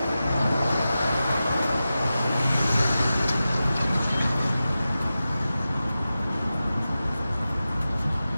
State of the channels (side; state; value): both; inverted; correlation -0.93